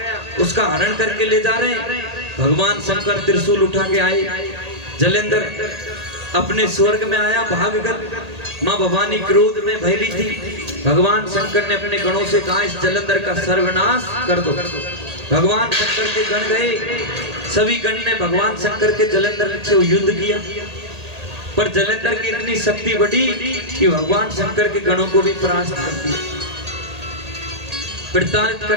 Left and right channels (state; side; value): late; left; 1.8 ms